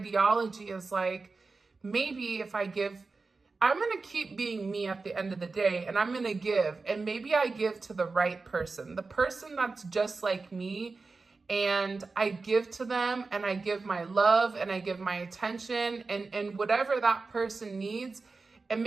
is like, maybe if I give, I'm going to keep being me at the end of the day, and I'm going to give, and maybe I give to the right person, the person that's just like me, and I give to them, and I give my love, and I give my attention, and whatever that person needs, and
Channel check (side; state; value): left; quieter; 4.0 dB